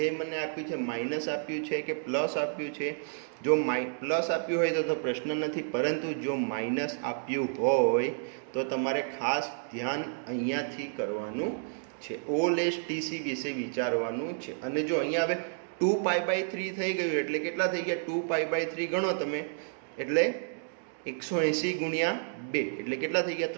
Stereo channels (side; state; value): left; silent; digital silence